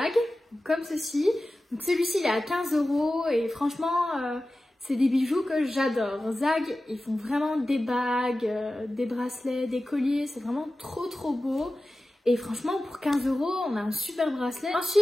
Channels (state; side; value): normal; both; correlation 0.95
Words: comme ceci. Donc celui-ci, il est à 15 € et franchement, c'est des bijoux que j'adore. Zag, ils font vraiment des bagues, des bracelets, des colliers, c'est vraiment trop beau. Et franchement, pour 15 €, on a un super bracelet.